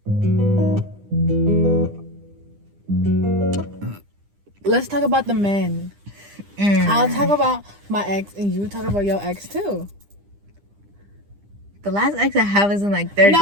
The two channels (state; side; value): late; left; 9.9 ms